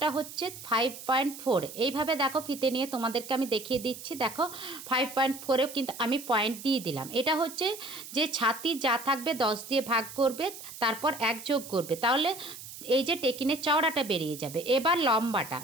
হচ্ছে 5.4। এইভাবে দেখো ফিতে নিয়ে তোমাদেরকে আমি দেখিয়ে দিচ্ছি। দেখো 5.4এও কিন্তু আমি পয়েন্ট দিয়ে দিলাম। এটা হচ্ছে যে ছাতি যা থাকবে 10 দিয়ে ভাগ করবে, তারপর 1 যোগ করবে, তাহলে এই যে টেকিনের চওড়াটা বেরিয়ে যাবে। এবার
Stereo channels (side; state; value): right; noise; hiss, 13 dB below the sound